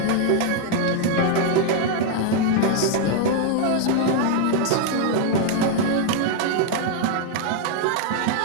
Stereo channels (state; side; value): different; both; correlation 0.00